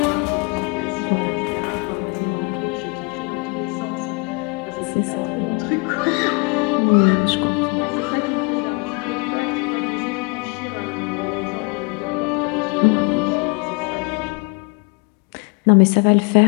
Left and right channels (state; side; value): quieter; right; 31.1 dB